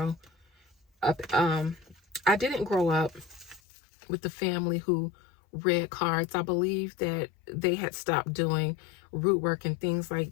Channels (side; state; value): right; drops out; at 3.6 s